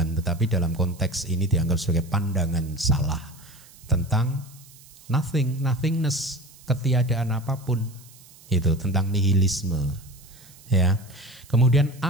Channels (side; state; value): right; noise; hiss, 23 dB below the sound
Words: tetapi dalam konteks ini dianggap sebagai pandangan salah tentang nothing, nothingness, ketiadaan apapun. Itu tentang nihilisme. Ya. Kemudian